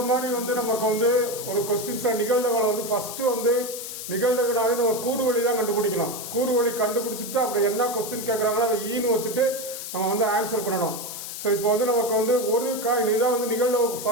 மாதிரி நமக்கு ஒரு கொஸ்டின்ஸ் நிகழ்தகவை ஃபர்ஸ்ட் நிகழ்தகனாவே நம்ம கூறுவழி தான் கண்டுபிடிக்கணும். கூறுவழி கண்டுபிடிச்சிட்டு அப்புறம் என்ன கொஸ்டின் கேட்குறாங்களோ அதை ஈன்னு வச்சுட்டு நம்ம ஆன்சர் பண்ணணும். ஸோ இப்போ நமக்கு ஒரு காயின் இதான் நிகழ்தகவுக்கு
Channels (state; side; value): noise; left; hiss, 8 dB below the sound